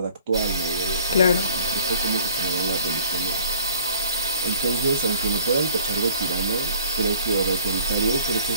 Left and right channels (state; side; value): inverted; both; correlation -0.54